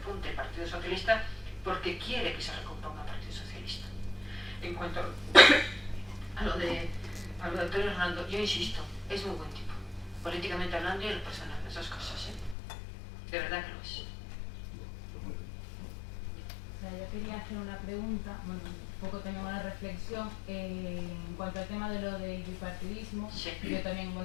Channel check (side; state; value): right; drops out; at 12.6 s